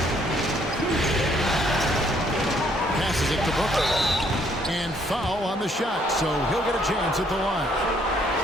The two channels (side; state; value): both; normal; correlation 0.66